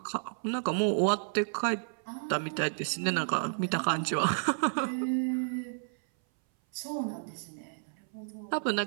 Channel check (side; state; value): left; silent; 57 dB below the other